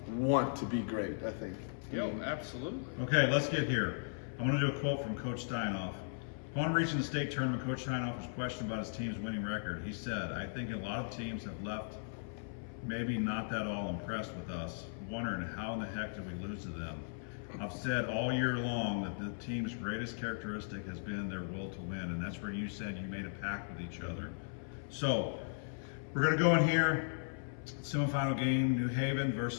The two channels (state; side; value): silent; right; 53 dB below the other